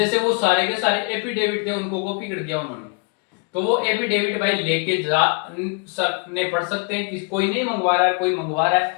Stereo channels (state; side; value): quieter; right; 35.9 dB